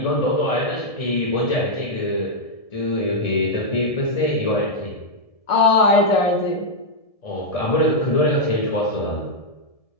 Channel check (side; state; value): right; late; 1.7 ms